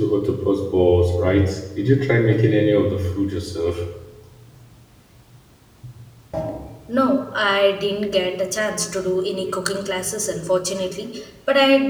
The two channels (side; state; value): both; identical; correlation 1.00